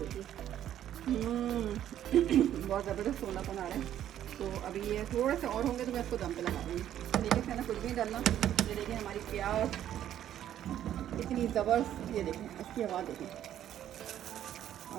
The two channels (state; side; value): quieter; left; 11.2 dB